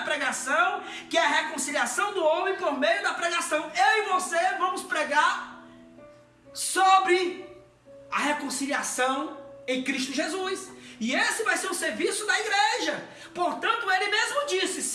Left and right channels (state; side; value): identical; both; correlation 1.00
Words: pregação, que é a reconciliação do homem por meio da pregação. Eu e você vamos pregar sobre a reconciliação em Cristo Jesus. E esse vai ser o serviço da igreja. Portanto, ele mesmo disse,